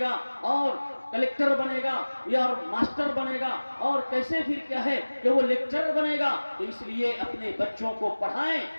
اور کلیکٹر بنے گا یا ماسٹر بنے گا، اور کیسے پھر کیا ہے کہ وہ لیکچرر بنے گا؟ تو اس لیے اپنے بچوں کو پڑھائیں،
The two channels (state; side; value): inverted; both; correlation -1.00